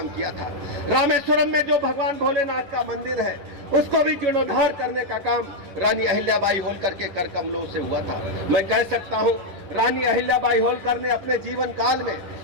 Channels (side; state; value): left; late; 10 ms